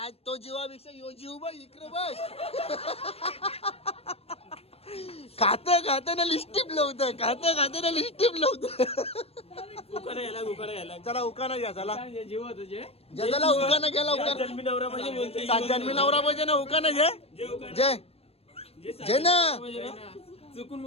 तो जीवापेक्षा यो जीव बघ इकडे बघ. खात ना लिस्टिप लावतं चला उकाना घ्या चला ज्याला उकाना घ्या लवकर. 7 जन्मी नवरा पाहिजे ना उकाना जय ना चुकून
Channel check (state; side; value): late; right; 0.29 ms